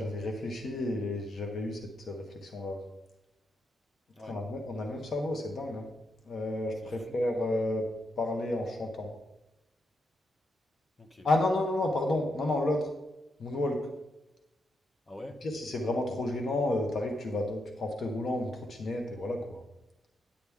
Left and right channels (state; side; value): normal; both; correlation 0.82